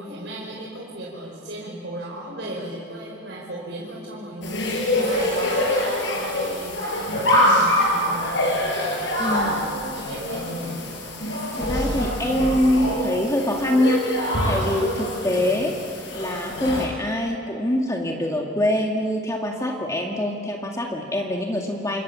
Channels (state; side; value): normal; both; correlation 0.37